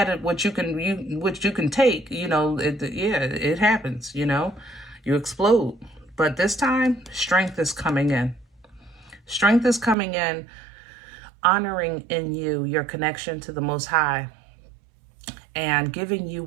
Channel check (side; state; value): left; drops out; at 10.0 s